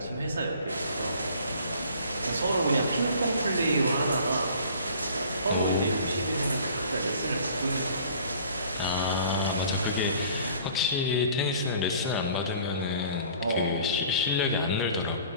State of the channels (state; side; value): inverted; both; correlation -0.50